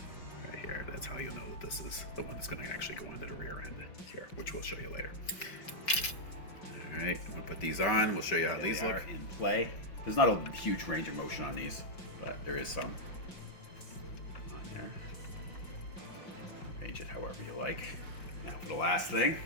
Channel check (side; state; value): right; late; 5.6 ms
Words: right here. That's how you'll know that this is the one that's gonna actually go into the rear end here, which we'll show you later. All right, I'm gonna put these on. We'll show you how these look in play. There's not a huge range of motion on these, but there is some on there. Change it however you like. Now for the last thing,